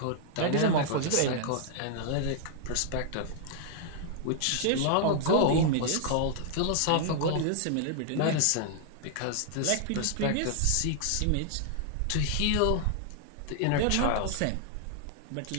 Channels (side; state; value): both; different; correlation 0.00